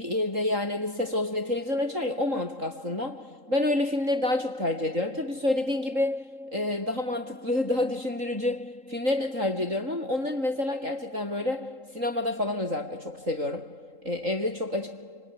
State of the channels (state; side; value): late; left; 3.8 ms